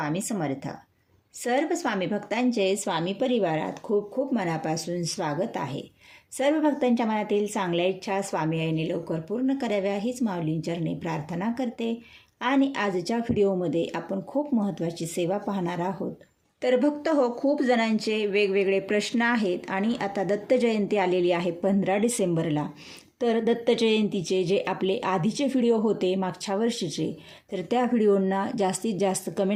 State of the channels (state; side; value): identical; both; correlation 1.00